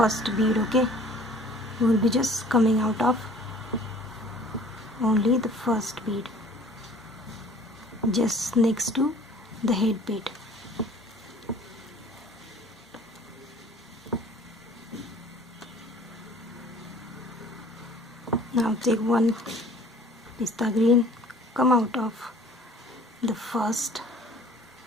bead, okay? We will be just coming out of only the first bead, just next to the head bead. Now take 1 pista green, come out of the first,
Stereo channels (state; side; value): normal; both; correlation 0.51